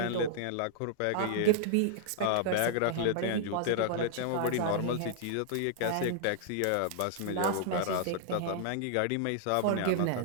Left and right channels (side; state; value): both; different; correlation -0.01